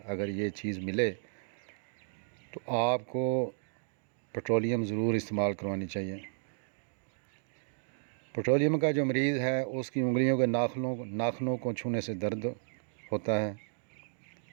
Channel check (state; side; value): silent; left; digital silence